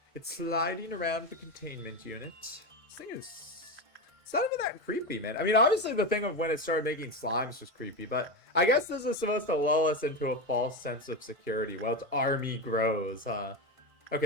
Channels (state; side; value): late; left; 1.4 ms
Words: It's sliding around the containment unit. This thing is... It's not even that creepy, man. I mean, obviously the thing of when it started making slimes was creepy. But I guess this is supposed to lull us into a false sense of security while its army grows, huh?